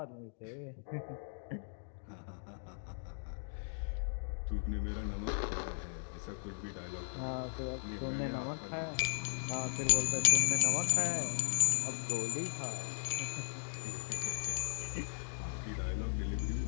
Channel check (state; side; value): silent; right; digital silence